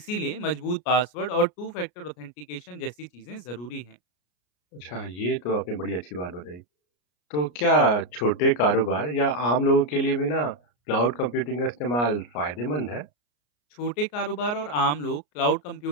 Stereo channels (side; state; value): right; late; 33 ms